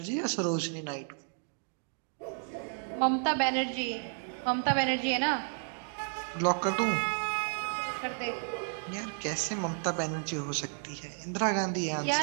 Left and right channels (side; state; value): left; silent; 56 dB below the other